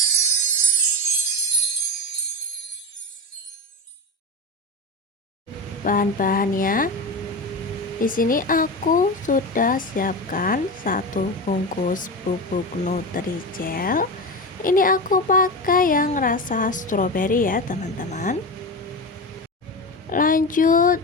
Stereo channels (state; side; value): normal; both; correlation 0.22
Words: Bahan-bahannya di sini aku sudah siapkan satu bungkus bubuk Nutrijel. Ini aku pakai yang rasa stroberi ya teman-teman. Lanjut